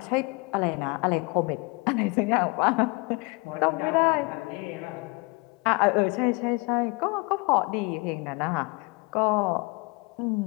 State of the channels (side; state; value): right; quieter; 28.1 dB